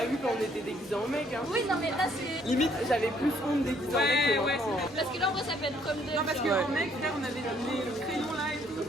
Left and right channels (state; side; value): normal; both; correlation 0.66